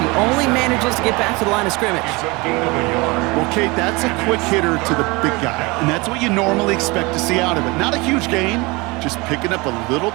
only manages to get back to the line of scrimmage. Well, Kate, that's a quick hitter to the big guy, and that's what you normally expect to see out of it. Not a huge gain, just picking up a little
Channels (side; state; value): left; quieter; 25.1 dB